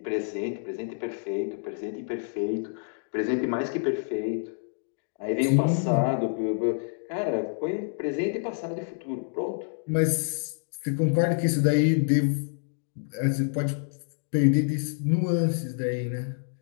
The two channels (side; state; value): right; silent; digital silence